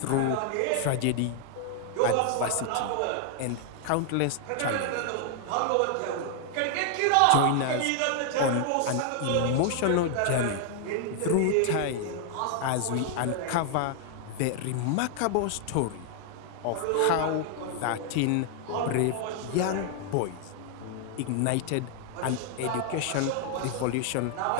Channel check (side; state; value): both; different; correlation 0.00